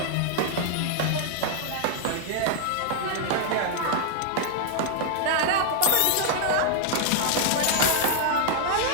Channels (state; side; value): different; both; correlation -0.01